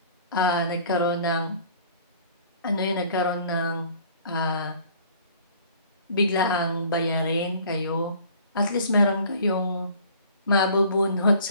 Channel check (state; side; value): inverted; both; correlation -0.51